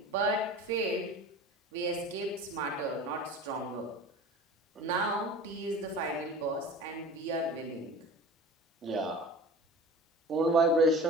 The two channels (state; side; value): normal; both; correlation 0.39